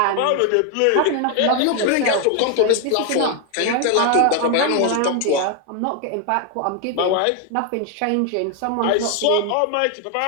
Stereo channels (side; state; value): both; different; correlation 0.00